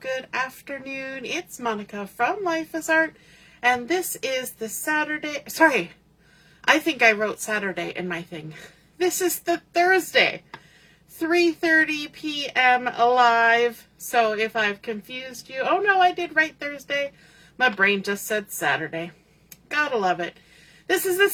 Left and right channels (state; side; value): identical; both; correlation 1.00